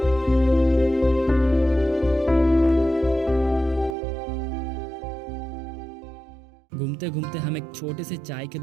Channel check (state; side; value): drops out; left; at 4.0 s